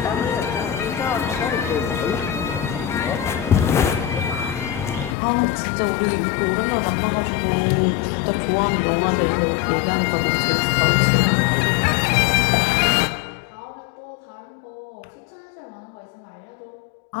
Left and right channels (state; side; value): drops out; right; at 5.2 s